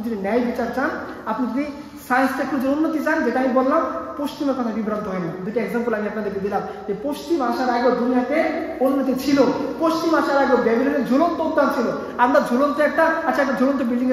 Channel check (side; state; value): both; identical; correlation 1.00